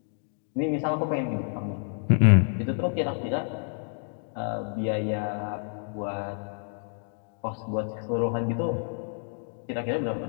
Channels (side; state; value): right; silent; 59 dB below the other